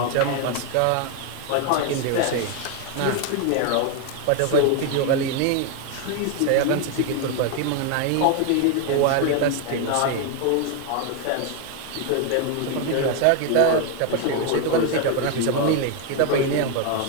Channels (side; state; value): both; different; correlation 0.01